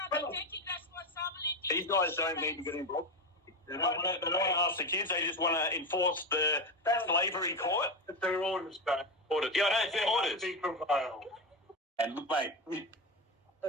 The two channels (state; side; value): normal; both; correlation 0.16